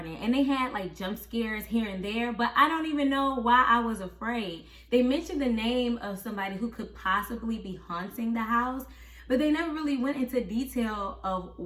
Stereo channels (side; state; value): both; identical; correlation 1.00